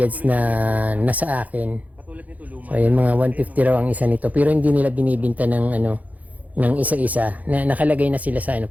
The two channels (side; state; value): left; late; 0.076 ms